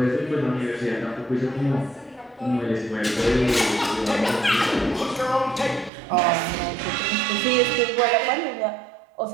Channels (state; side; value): drops out; left; at 5.9 s